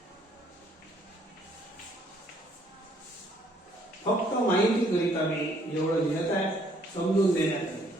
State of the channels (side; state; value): both; normal; correlation 0.64